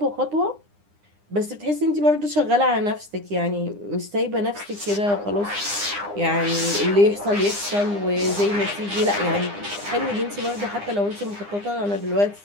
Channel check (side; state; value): left; late; 9.8 ms